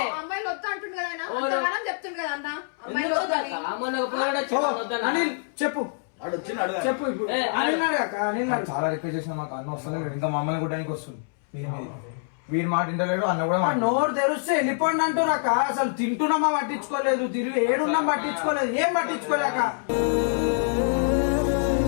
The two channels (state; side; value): silent; right; 61 dB below the other